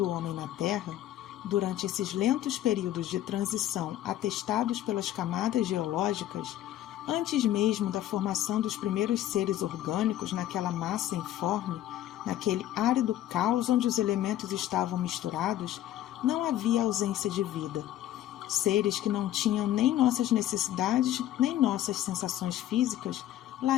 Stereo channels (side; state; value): right; quieter; 12.9 dB